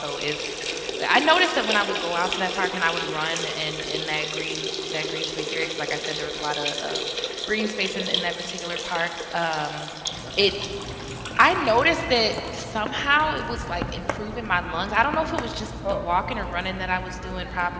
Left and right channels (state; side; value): identical; both; correlation 1.00